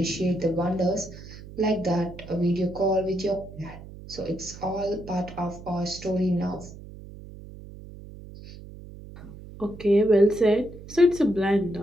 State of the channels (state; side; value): noise; right; hum, 16 dB below the sound